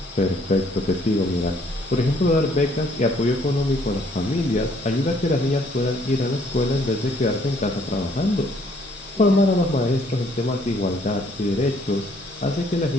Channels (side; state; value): both; normal; correlation 0.64